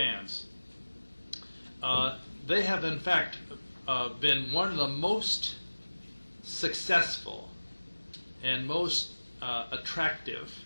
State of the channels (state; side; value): inverted; both; correlation -1.00